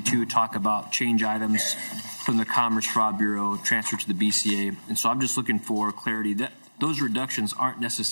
talk about change items from the Commerce Fraud Bureau transferred to the BCA. And so I'm just looking for clarity that those reductions aren't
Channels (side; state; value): both; inverted; correlation -1.00